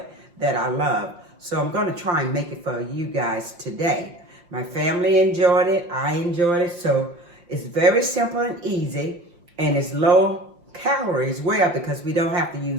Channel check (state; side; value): late; left; 5.7 ms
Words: that I love. So I'm going to try and make it for you guys today. My family enjoyed it. I enjoyed it. So it's very simple and easy, and it's low calorie as well because we don't have to